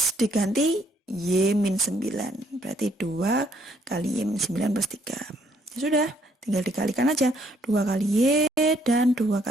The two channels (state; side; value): normal; both; correlation 0.68